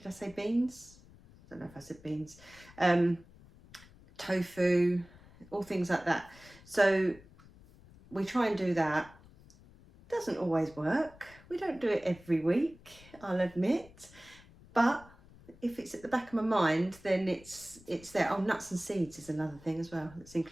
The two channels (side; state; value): left; noise; rumble, 23 dB below the sound